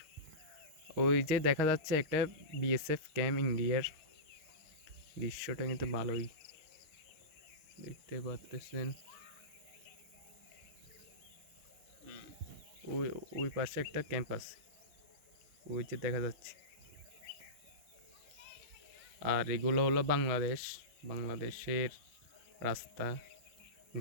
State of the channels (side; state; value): left; late; 6.4 ms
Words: ওই যে দেখা যাচ্ছে একটা বিএসএফ ক্যাম্প ইন্ডিয়ার, দৃশ্যটা কিন্তু ভালোই দেখতে পারতেছেন। ওই ওই পাশে একটা ক্যাম্প আছে, ওই যে দেখা যাচ্ছে। আর এগুলো হলো বাংলাদেশের রাস্তা